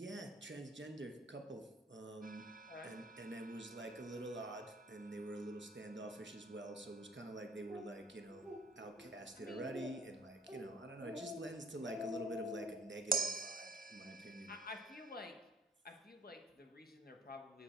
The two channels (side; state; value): both; normal; correlation 0.55